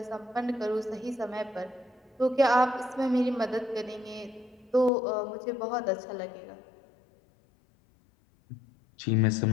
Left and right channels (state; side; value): drops out; right; at 4.9 s